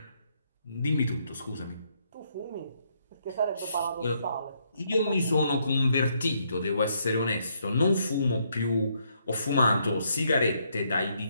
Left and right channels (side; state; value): both; inverted; correlation -0.73